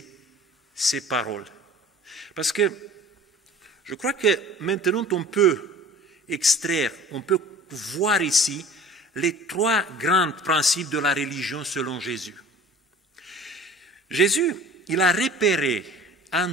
ces paroles. Parce que je crois que maintenant on peut extraire, on peut voir ici les trois grands principes de la religion selon Jésus. Jésus, il a repéré un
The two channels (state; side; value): normal; both; correlation 0.44